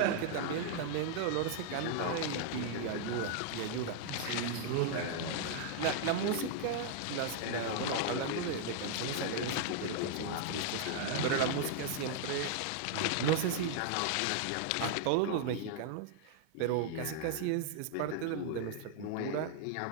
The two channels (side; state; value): both; different; correlation 0.00